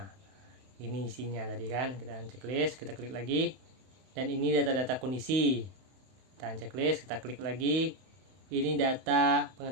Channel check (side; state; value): left; late; 31 ms